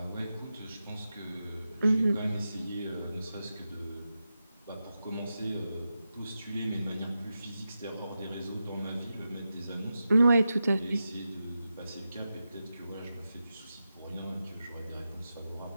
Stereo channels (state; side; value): inverted; both; correlation -0.90